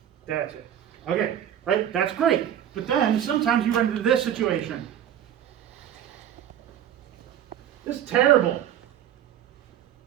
That's it. Okay, right? That's great. But then sometimes you run into this situation. This is terrible.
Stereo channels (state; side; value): quieter; left; 10.3 dB